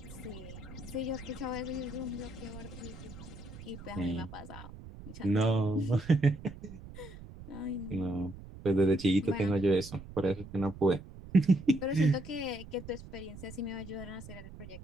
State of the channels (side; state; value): right; noise; rumble, 15 dB below the sound